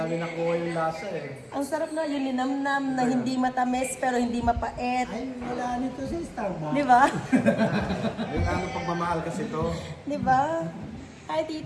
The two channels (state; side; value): identical; both; correlation 1.00